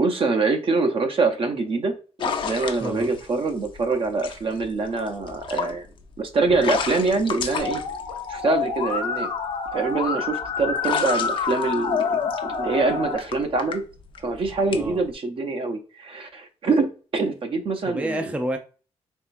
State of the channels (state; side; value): normal; both; correlation 0.51